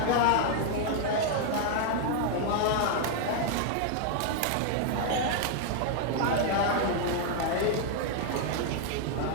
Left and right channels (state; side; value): different; both; correlation 0.00